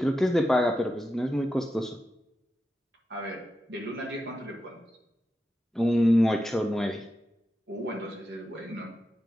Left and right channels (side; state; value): both; normal; correlation 0.89